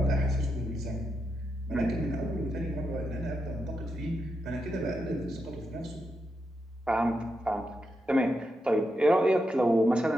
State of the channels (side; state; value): both; normal; correlation 0.85